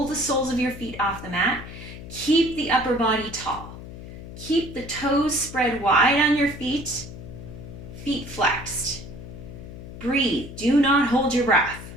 the soles of your feet off the mat. Keep the upper body tall. Keep the toes spread wide on your feet, feet flexed. Breathe, do not hold your breath.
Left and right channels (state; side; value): noise; left; hum, 13 dB below the sound